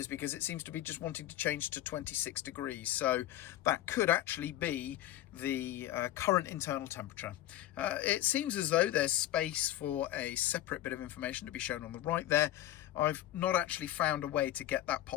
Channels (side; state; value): right; quieter; 13.6 dB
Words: because it seems to be just wanting to change to 26 degrees, so that could actually be the current internal temperature. It seems as though there's space for a separate bit of information to be shown on the right there. I've not actually found a way to get that